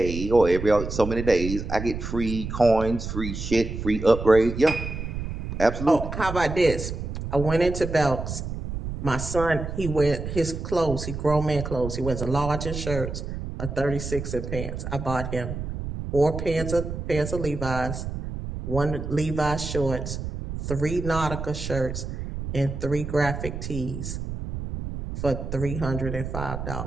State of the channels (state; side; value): noise; right; rumble, 6 dB below the sound